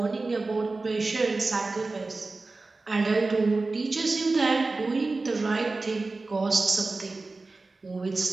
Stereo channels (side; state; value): left; quieter; 3.5 dB